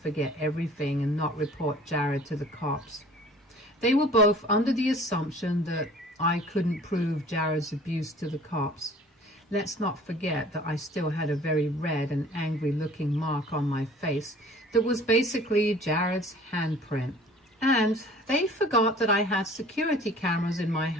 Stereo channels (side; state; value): both; normal; correlation 0.49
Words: everything and not report Jared to the cops. They were both under the assumption that I couldn't prove Jared's abuse to the cops. Let's not forget that I still had a very red and angry-looking mark on my face that was basically Jared's handprint. And they forgot that I had security cameras in my